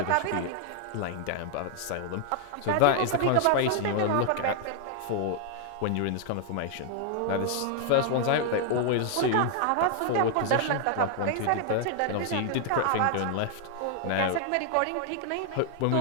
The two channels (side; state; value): both; different; correlation 0.00